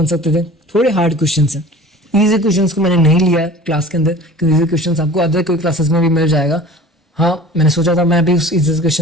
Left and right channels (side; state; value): both; normal; correlation 0.42